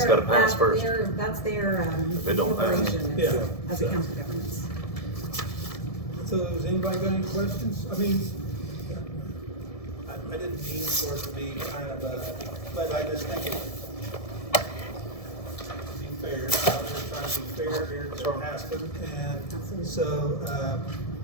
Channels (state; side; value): late; right; 1.7 ms